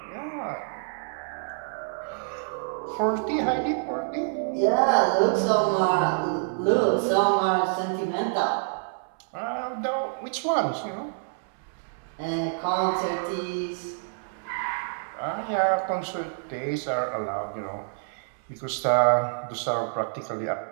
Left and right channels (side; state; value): left; silent; 60 dB below the other